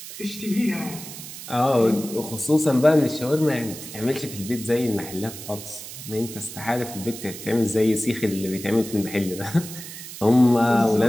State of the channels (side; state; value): right; noise; hiss, 12 dB below the sound